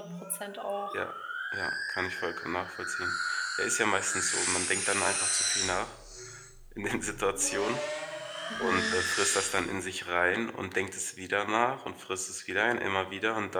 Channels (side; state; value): both; identical; correlation 1.00